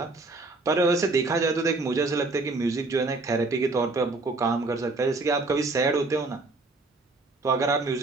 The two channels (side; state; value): left; quieter; 3.3 dB